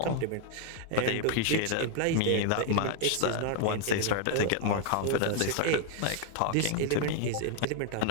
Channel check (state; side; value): different; both; correlation 0.00